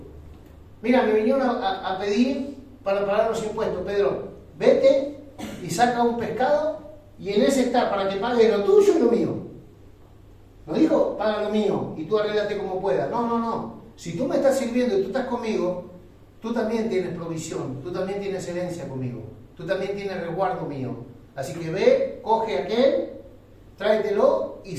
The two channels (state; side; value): identical; both; correlation 1.00